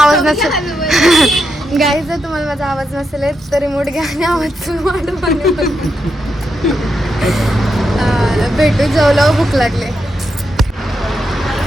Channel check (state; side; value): normal; both; correlation 0.84